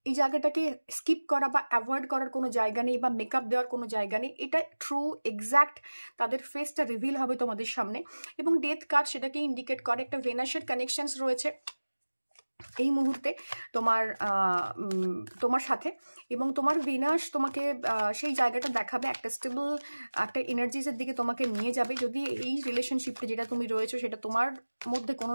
এই জায়গাটাকে স্কিপ করা বা অ্যাভয়েড করার কোনো জায়গা নেই, বা মেকআপ দেওয়ার কোনো জায়গা নেই। এটা ট্রু এক্স্যাক্ট তাদের ফেসটা রিভিল হবে তোমাদের সামনে। এবং ডেথ কার্ড সেটাকে ইন্ডিকেট করে, একটা ভেনাসের কানেকশনস রয়েছে এই মুহূর্তে তোমার সাথে, এবং তোমার ভেনাস তোমাকে সেই জায়গাটা দেখাবে, একটা স্টেবল একটা এনার্জিসের দিকে তোমাকে নিয়ে যাবে। যদি এই রিলেশনশিপটা যেটা তুমি রয়েছো, সেটা তোমার মধ্যে কোনো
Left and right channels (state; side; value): inverted; both; correlation -1.00